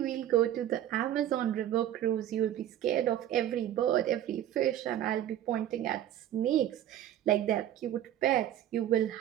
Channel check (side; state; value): left; quieter; 11.7 dB